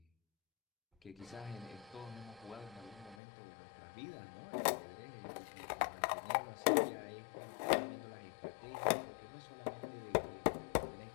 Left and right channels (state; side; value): drops out; right; at 3.2 s